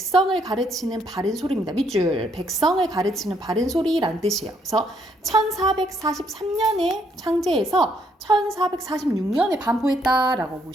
가르치는 바른 소리입니다. 밑줄. 백성을 가르치는 바른 소리란 뜻이에요. 그래서 1443년에 창제해서 1446년에 반포했다라고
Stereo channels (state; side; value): normal; both; correlation 0.71